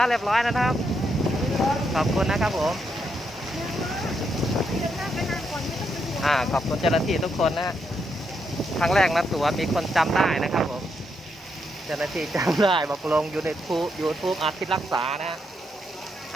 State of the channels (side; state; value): both; normal; correlation 0.80